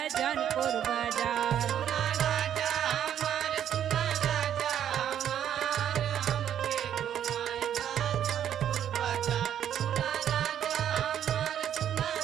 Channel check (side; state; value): left; quieter; 10.0 dB